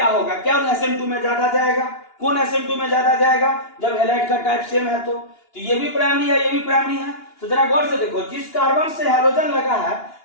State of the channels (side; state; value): right; late; 2.9 ms